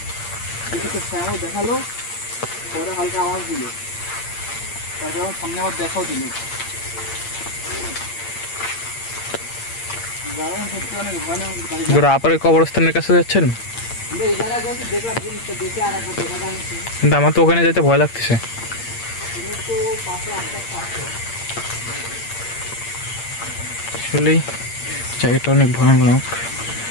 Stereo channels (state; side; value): late; right; 8.7 ms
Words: কিছুটা ছায়াও দেখালো, পরে হালকা আওয়াজ দিল, তারপরে আমার সামনে আবার দেখাও দিল। জায়গাটা সত্যি অনেক ভয়ানক। গুরু, আপারে কবরস্থানের কাছে যাচ্ছেন? আমরা এই জায়গায় যেহেতু দেখলাম জিনিসটা, দেখে আর একবার দেখা যাচ্ছে। কিন্তু আমার তো ওখানে যেতে ভয় লাগতেছে। তুমি তো পাশে আস্তে আস্তে আসো। আসলেই জায়গাটা অনেক ভয়ানক।